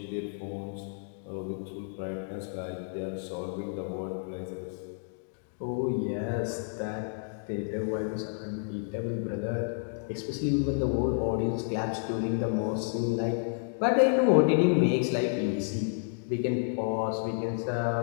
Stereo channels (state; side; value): silent; right; digital silence